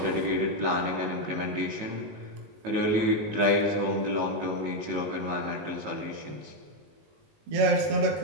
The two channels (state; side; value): late; left; 19 ms